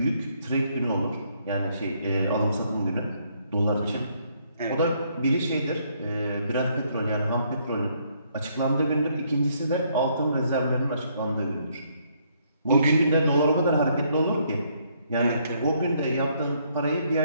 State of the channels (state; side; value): inverted; both; correlation -0.70